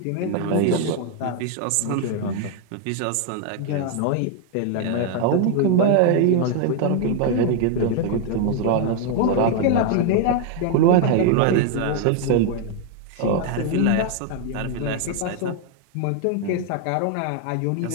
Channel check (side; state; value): both; different; correlation 0.00